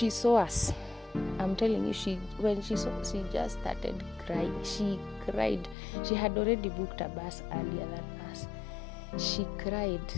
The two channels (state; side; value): drops out; right; at 5.8 s